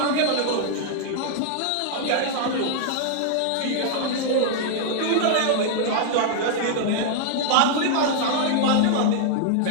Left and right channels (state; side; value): different; both; correlation -0.01